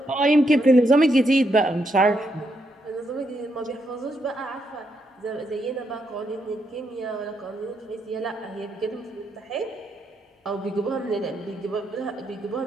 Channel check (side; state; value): both; normal; correlation 0.79